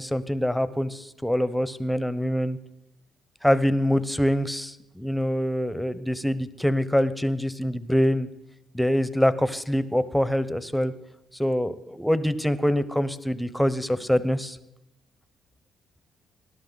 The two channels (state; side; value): normal; both; correlation 0.97